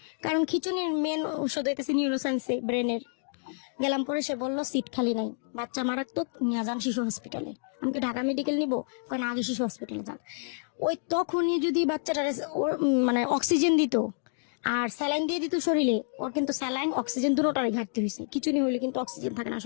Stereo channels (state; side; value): silent; right; digital silence